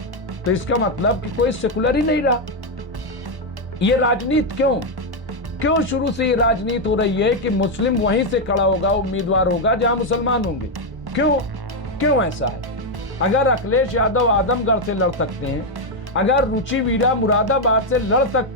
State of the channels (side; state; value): left; late; 1.1 ms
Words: तो इसका मतलब कि कोई सेकुलर ही नहीं रहा। ये राजनीति क्यों शुरू से ये राजनीति हो रही है कि मुस्लिम वहीं से खड़ा होगा, उम्मीदवार होगा जहां मुसलमान होंगे? क्यों ऐसा है? अगर अखिलेश यादव आजमगढ़ से लड़ सकते हैं, अगर रुचि वीरा मुरादाबाद से लड़